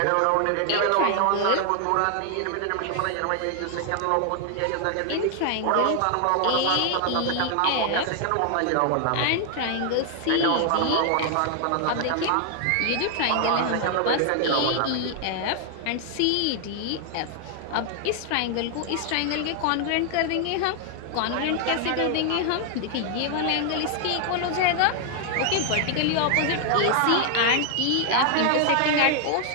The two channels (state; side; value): different; both; correlation 0.00